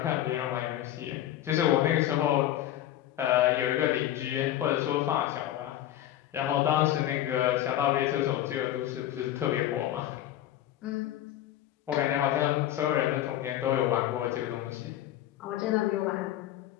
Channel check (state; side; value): quieter; right; 12.7 dB